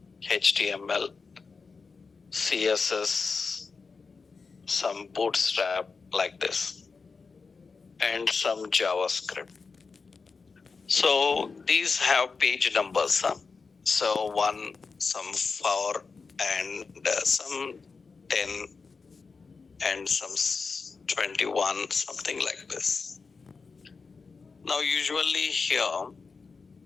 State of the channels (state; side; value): quieter; right; 4.7 dB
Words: HTML, CSS, some bootstrap like this, and some JavaScript. So these have page numbers. So 1, some 4, and some 10, and some 21, something like this. Now usually here,